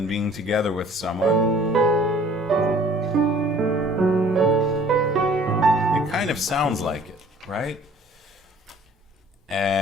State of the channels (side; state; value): both; normal; correlation 0.52